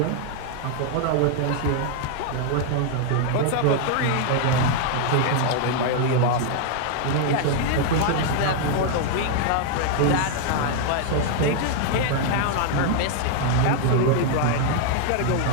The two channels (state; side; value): different; both; correlation 0.00